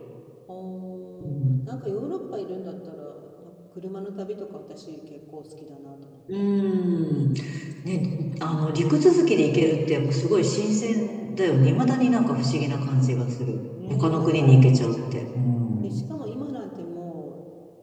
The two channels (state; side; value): identical; both; correlation 1.00